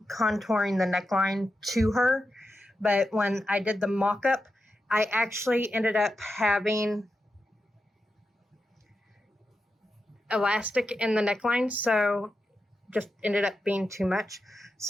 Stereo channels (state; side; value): normal; both; correlation 0.89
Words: contouring the neckline to her. But when I did the mock-up, I actually ended up having elastic in the neckline, so just ended up being too much.